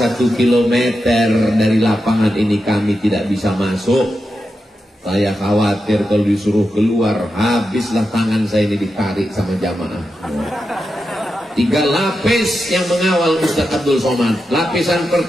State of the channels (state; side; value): normal; both; correlation 0.89